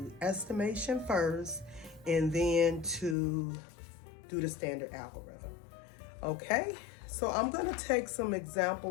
estimation first and then to do the standard algorithm. Okay, so I'm going to take some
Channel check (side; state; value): right; drops out; at 3.2 s